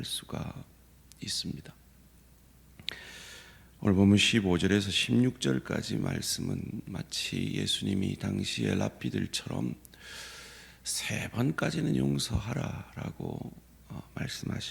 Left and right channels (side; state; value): both; identical; correlation 1.00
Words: 수가 있습니다. 오늘 보면 15절에서 16절까지 말씀은 마치 예수님이 당시의 랍비들처럼 3번까지는 용서하라라고